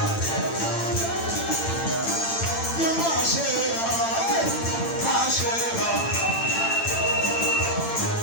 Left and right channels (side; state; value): right; late; 8.9 ms